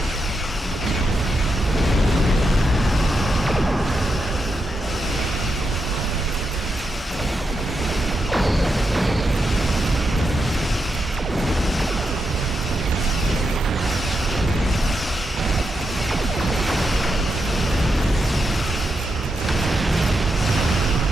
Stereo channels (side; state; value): both; normal; correlation 0.85